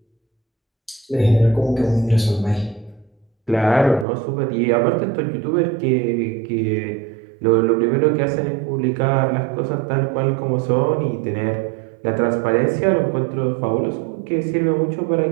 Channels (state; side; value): drops out; left; at 4.0 s